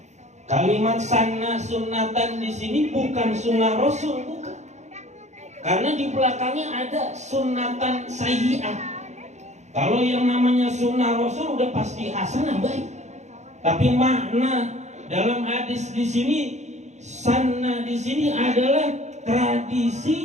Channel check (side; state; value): left; late; 0.33 ms